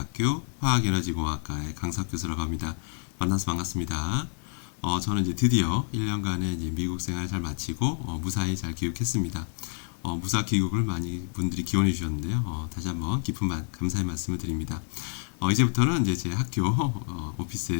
화학에너지공학과의 강석 교수라고 합니다. 만나서 반갑습니다. 저는 이제 드디어 1년간의 이제 미국 생활을 잘 마치고 무사히 잘 귀국했습니다. 무사 귀국을 많이 분들이 기원해 주셨는데요. 다시 한번 깊은 감사의 말씀을 드립니다. 이제부터는 이제 제 학교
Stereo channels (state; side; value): silent; right; digital silence